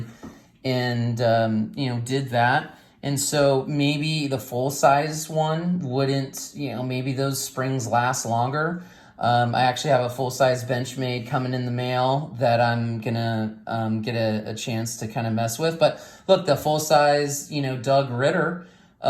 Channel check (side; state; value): both; identical; correlation 1.00